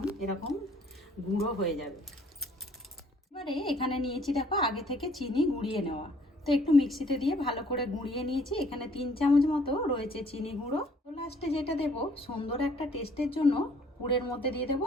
এরকম গুঁড়ো হয়ে যাবে। এবারে এখানে নিয়েছি দেখো আগে থেকে চিনি গুঁড়িয়ে নেওয়া, তো একটু মিক্সিতে দিয়ে ভালো করে গুঁড়িয়ে নিয়েছি। এখানে 3 চামচ মতো রয়েছে চিনি গুঁড়ো। তো লাস্টে যেটা দেবো সুন্দর একটা টেস্টের জন্য গুড়ের মধ্যে দিয়ে দেবো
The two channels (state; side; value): normal; both; correlation 0.60